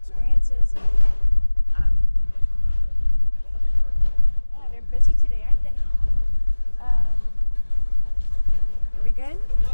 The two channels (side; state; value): both; inverted; correlation -1.00